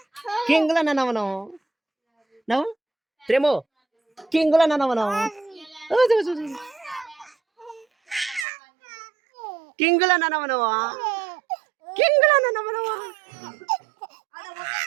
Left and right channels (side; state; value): left; drops out; at 8.5 s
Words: కింగులా నాన్న, మనం నవ్వు ప్రేమో కింగులా నాన్న, మనం కింగులా నాన్న, మనవా కింగులా నాన్న, మనవా.